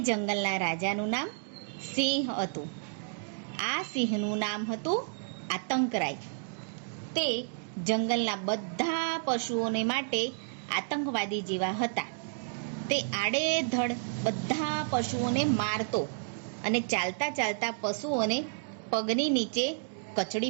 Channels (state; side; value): silent; left; digital silence